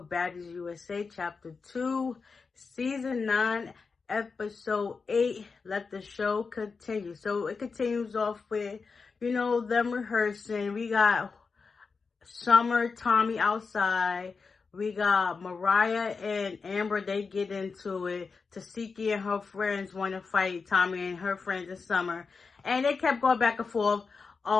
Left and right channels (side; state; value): right; quieter; 4.8 dB